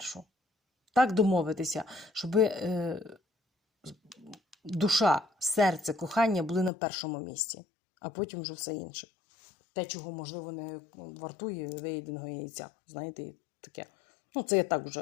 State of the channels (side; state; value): right; drops out; at 6.7 s